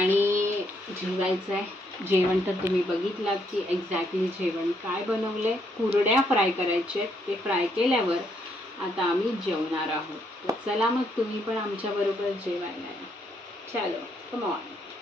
जेवायचं आहे. जेवण तर तुम्ही बघितलात की एक्झॅक्टली जेवण काय बनवलंय. कुरड्या फ्राय करायचे आहेत, ते फ्राय केल्यावर आता आम्ही जेवणार आहोत. तर चला मग तुम्ही पण आमच्या बरोबर जेवायला या. चलो कम ऑन.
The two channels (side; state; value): both; normal; correlation 0.74